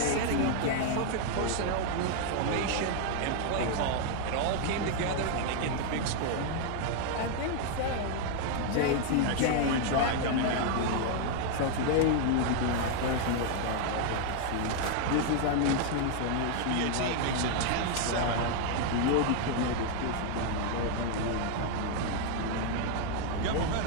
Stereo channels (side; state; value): both; different; correlation 0.00